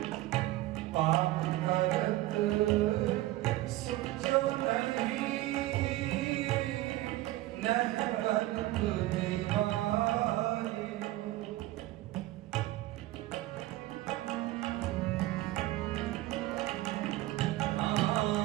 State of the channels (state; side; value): quieter; left; 16.8 dB